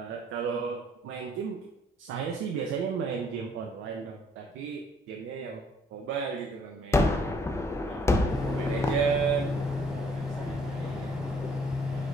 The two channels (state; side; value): normal; both; correlation 0.63